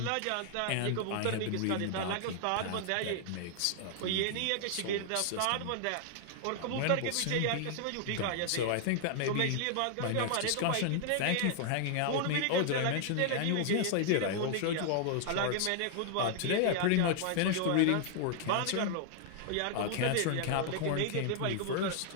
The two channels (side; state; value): both; different; correlation -0.01